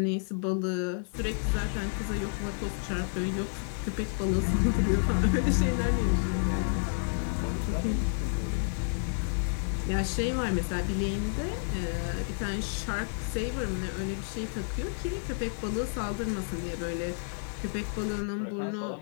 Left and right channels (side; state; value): right; silent; digital silence